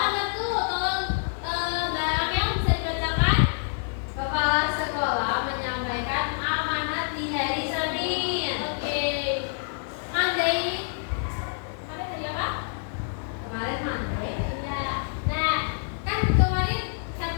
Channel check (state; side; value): silent; right; digital silence